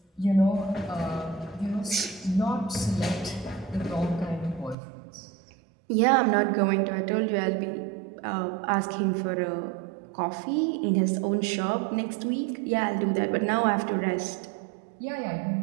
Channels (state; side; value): drops out; left; at 4.8 s